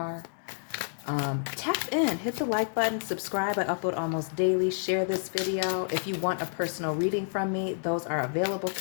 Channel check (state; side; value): silent; right; digital silence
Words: Tap in, hit the like button, subscribe. I upload almost daily. Share this video. If you want a personal reading from me, those are available